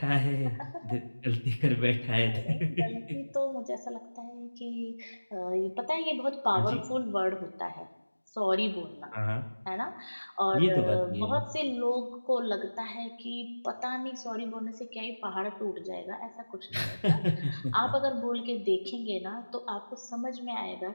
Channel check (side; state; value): both; inverted; correlation -1.00